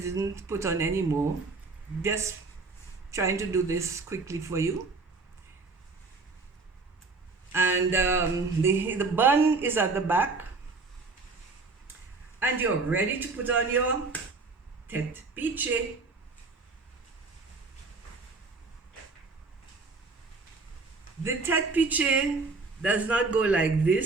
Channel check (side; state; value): left; quieter; 3.9 dB